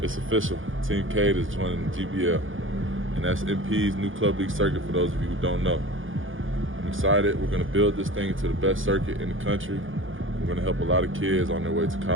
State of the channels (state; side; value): late; left; 0.58 ms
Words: It's official. Team K is joining GBL, and that's MP's new club league circuit for those of you who don't know. I'm excited. We're going to build this thing into the best circuit in the country. We're going to help a lot of kids on their way to